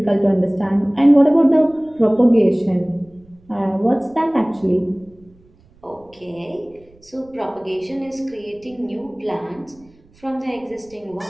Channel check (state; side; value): noise; right; rumble, 29 dB below the sound